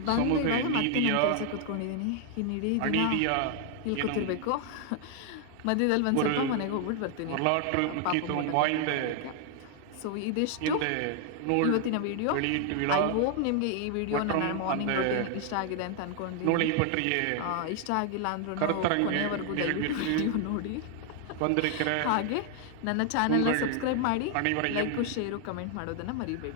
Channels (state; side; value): different; both; correlation 0.00